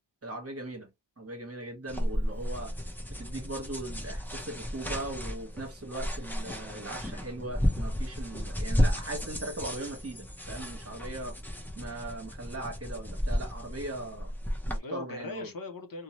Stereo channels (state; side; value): normal; both; correlation 0.72